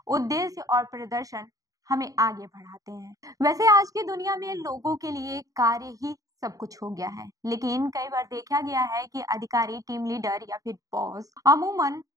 उद्देश्य और प्रदर्शन हमें आगे बढ़ाते हैं। वैसे आज की दुनिया में लोगों के लिए कार्य ही सब कुछ हो गया है, लेकिन कई बार देखा गया है कि अधिकारी, टीम लीडर या फिर बॉस अमूमन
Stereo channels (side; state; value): left; late; 0.17 ms